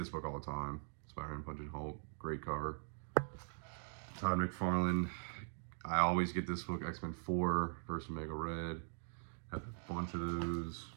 book all the time. Spider-Man Punching Hulk, great cover. Todd McFarlane, I always get this book, X-Men 4, First Omega Red. Have a bunch of those.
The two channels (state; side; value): silent; left; digital silence